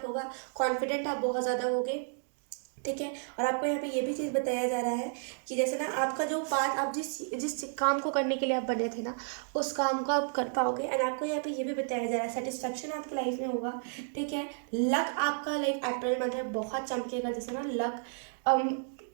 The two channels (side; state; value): left; silent; 56 dB below the other